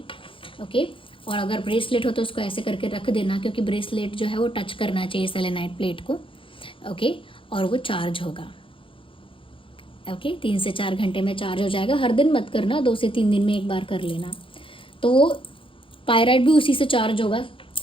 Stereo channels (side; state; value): right; late; 0.25 ms